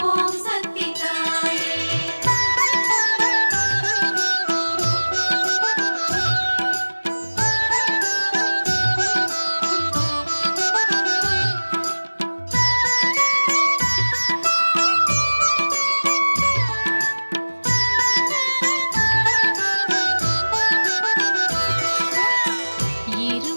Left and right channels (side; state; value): both; inverted; correlation -1.00